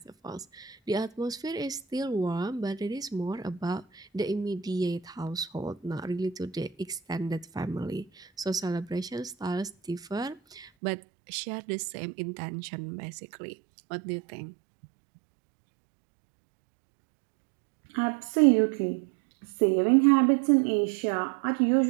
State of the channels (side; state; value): left; drops out; at 10.7 s